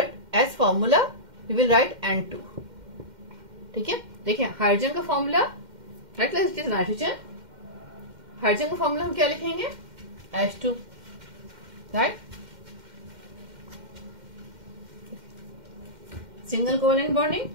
as formula we will write N2, ठीक है। देखिए हाइड्रोजन का formula, right class, it is nitrogen, hydrogen का formula हम क्या लिखेंगे, H2, right. Single covalent bonding,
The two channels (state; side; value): late; left; 2.1 ms